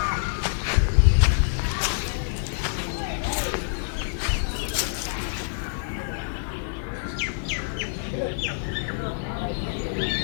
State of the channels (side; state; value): right; silent; digital silence